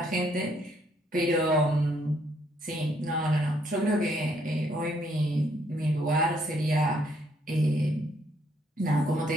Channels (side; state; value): both; normal; correlation 0.70